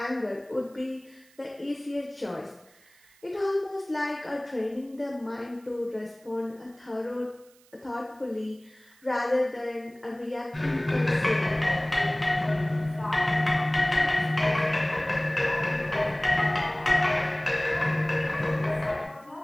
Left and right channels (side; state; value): right; noise; hiss, 29 dB below the sound